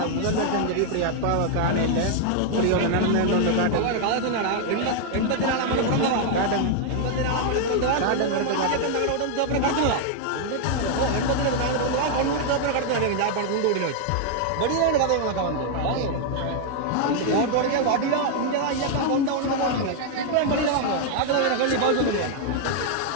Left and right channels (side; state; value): both; different; correlation 0.00